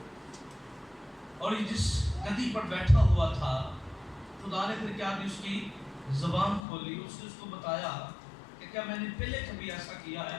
اور یہ جس گدی پر بیٹھا ہوا تھا خدا نے پھر کیا کی؟ اس کی زبان کھولی. اس نے اس کو بتایا کہ کیا میں نے پہلے کبھی ایسا کیا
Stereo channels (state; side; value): drops out; right; at 6.6 s